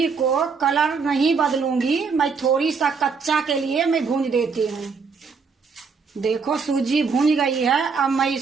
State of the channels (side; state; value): left; quieter; 5.3 dB